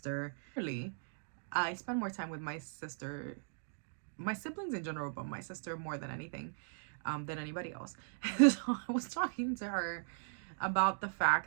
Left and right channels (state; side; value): silent; left; digital silence